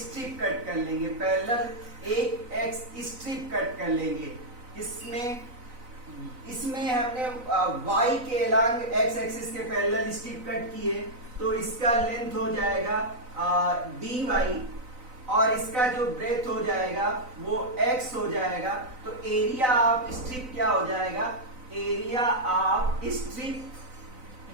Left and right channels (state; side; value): late; left; 4.0 ms